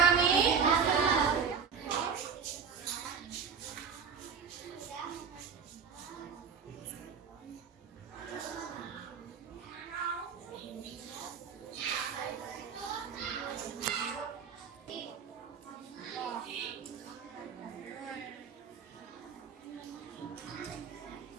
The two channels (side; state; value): left; quieter; 6.4 dB